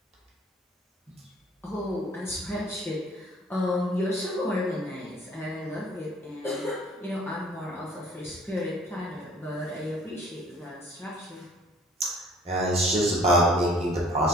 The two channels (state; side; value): normal; both; correlation 0.55